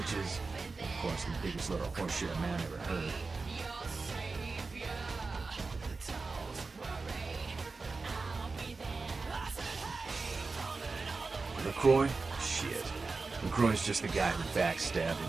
is, of course, the biggest little horseshit a man ever heard. LaCroix? Shit. LaCroix's just the guy who backstabbed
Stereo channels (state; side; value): quieter; left; 4.0 dB